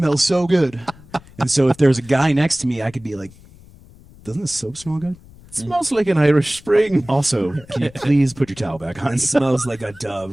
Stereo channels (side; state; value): left; noise; rumble, 23 dB below the sound